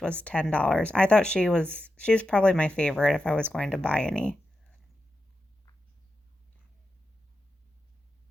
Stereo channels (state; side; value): normal; both; correlation 0.90